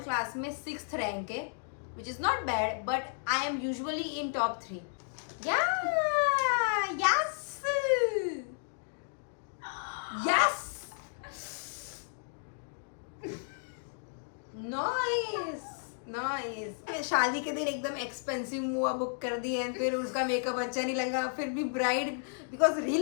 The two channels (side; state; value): right; silent; digital silence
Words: क्लास में 6th रैंक है, which is not bad, but I M usually in top 3। Yes yes, nice nice. शादी के दिन एकदम एक्सपेंसिव मुआ बुक कर दी है, फिर उसका मेकअप अच्छा नहीं लगा, फिर भी ब्राइड, बिकॉज